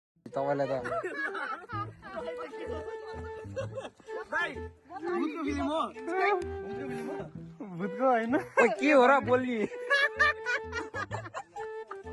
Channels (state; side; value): identical; both; correlation 1.00